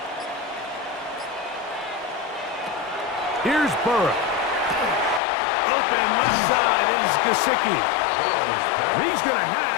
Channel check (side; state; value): right; drops out; at 5.2 s